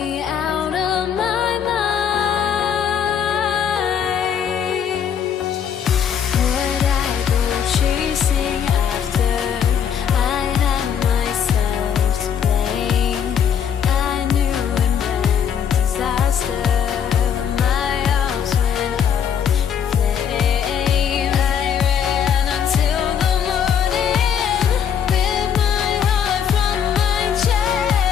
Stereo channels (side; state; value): right; quieter; 8.1 dB